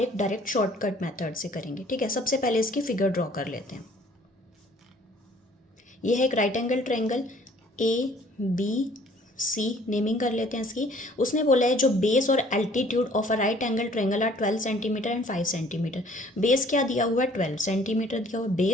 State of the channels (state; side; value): normal; both; correlation 0.56